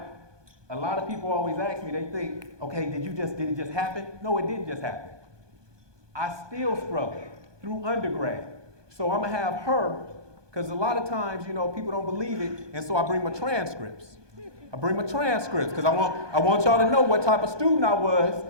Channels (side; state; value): left; late; 1.2 ms